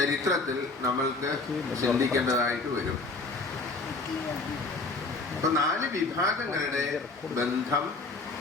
നമ്മൾക്ക് ചിന്തിക്കേണ്ടതായിട്ട് വരും. അപ്പൊ 4 വിഭാഗങ്ങളുടെ ബന്ധം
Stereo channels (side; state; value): right; quieter; 3.6 dB